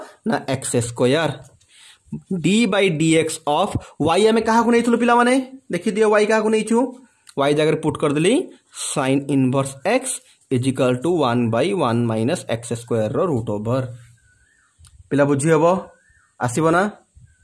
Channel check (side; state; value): both; identical; correlation 1.00